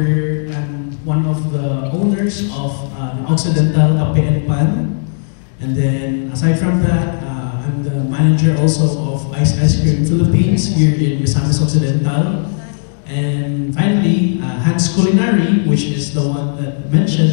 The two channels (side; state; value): right; silent; digital silence